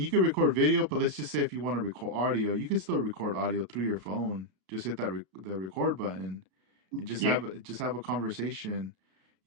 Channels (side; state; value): left; late; 33 ms